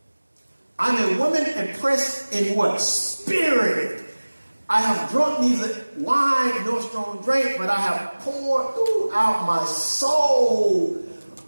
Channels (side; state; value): both; inverted; correlation -1.00